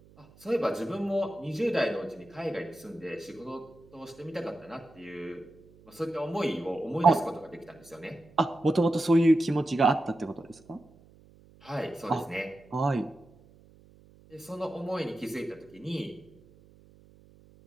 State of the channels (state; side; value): noise; right; hum, 26 dB below the sound